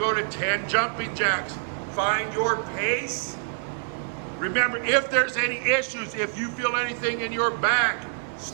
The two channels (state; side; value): silent; left; 61 dB below the other